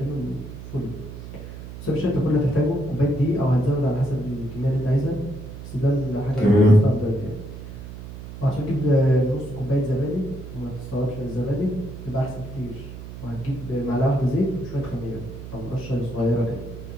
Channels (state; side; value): noise; right; hum, 12 dB below the sound